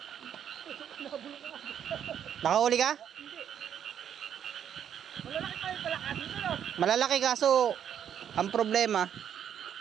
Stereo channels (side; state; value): left; quieter; 9.1 dB